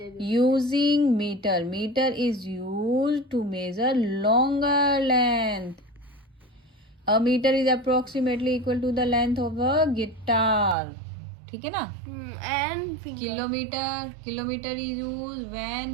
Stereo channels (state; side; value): drops out; left; at 10.8 s